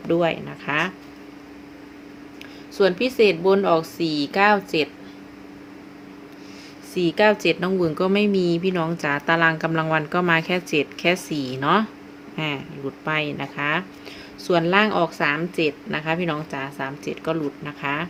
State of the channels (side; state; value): both; identical; correlation 1.00